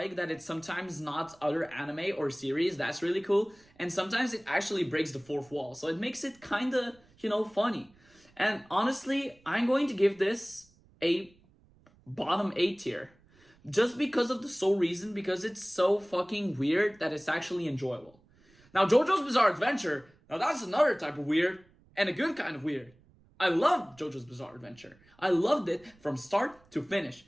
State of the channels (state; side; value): noise; right; rumble, 30 dB below the sound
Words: that it's sometimes not other anime or series. That's really cool. And sometimes it actually breaks the fourth wall. So it makes it kind of, funny. And honestly, I'm going to give this a bottom A tier. Just because of the sole reason, because it's so fucking weird that it's actually enjoyable. Now, JoJo's Bizarre Adventure, now that's another type of weird, and a good kind of weird. I loved JoJo's Bizarre Adventure. I loved it from start to finish.